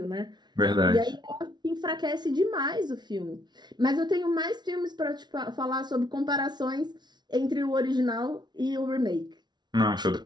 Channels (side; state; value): left; late; 0.20 ms